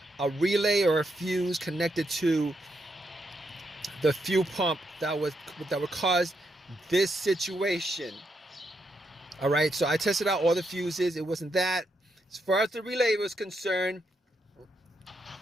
a relay or a fuse connected to the fuel pump that would cause this situation. All right, so I tested out all the fuses. It wasn't that. As far as the relay was concerned,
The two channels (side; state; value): both; normal; correlation 0.81